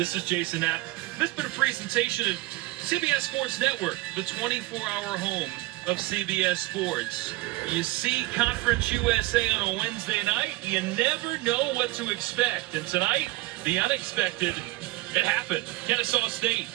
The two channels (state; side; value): quieter; left; 20.7 dB